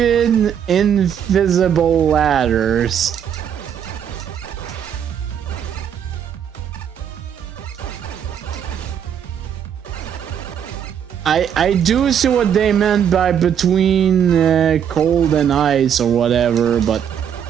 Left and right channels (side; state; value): left; quieter; 8.6 dB